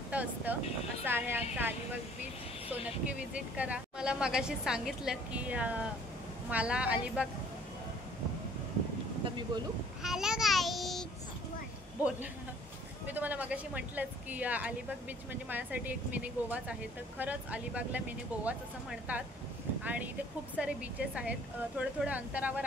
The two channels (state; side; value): normal; both; correlation 0.56